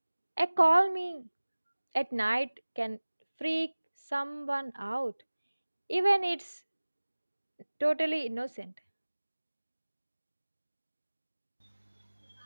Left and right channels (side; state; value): both; inverted; correlation -1.00